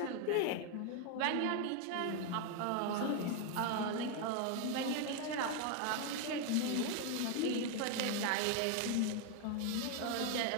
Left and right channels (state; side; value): different; both; correlation 0.01